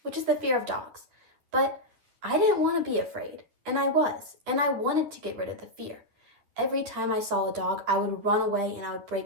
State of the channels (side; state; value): left; late; 10 ms